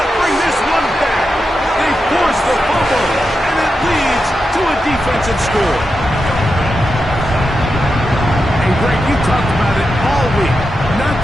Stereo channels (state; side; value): normal; both; correlation 0.88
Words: to bring this one back. They force the fumble, and it leads to a defensive score. And Greg, you talked about it all week. Not